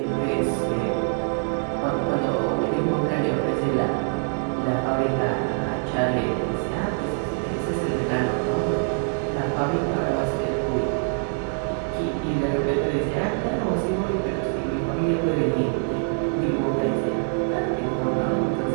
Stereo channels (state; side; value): silent; left; 60 dB below the other